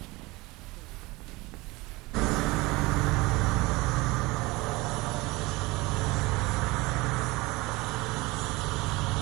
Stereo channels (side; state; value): left; quieter; 22.4 dB